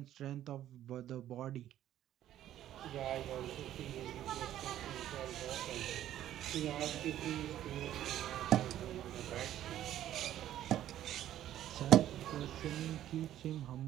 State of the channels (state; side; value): quieter; left; 12.2 dB